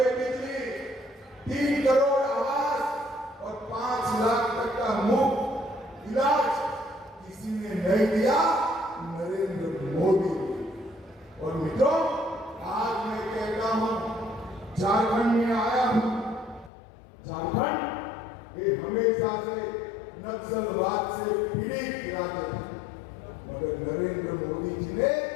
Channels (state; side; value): drops out; right; at 16.7 s